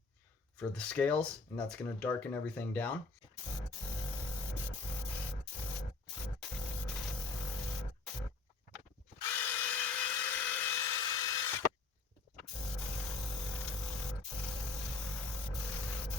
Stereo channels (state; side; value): quieter; right; 3.8 dB